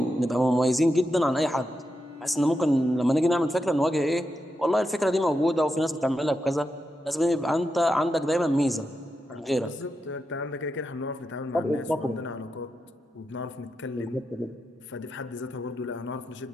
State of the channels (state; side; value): normal; both; correlation 0.87